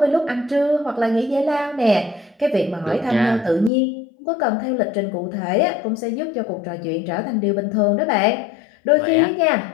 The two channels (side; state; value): right; drops out; at 3.7 s